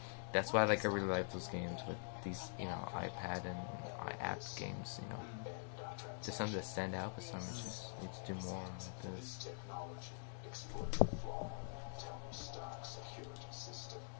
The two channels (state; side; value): silent; right; digital silence